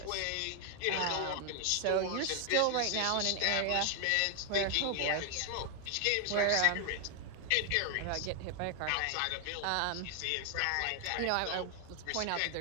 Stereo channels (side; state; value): both; different; correlation 0.00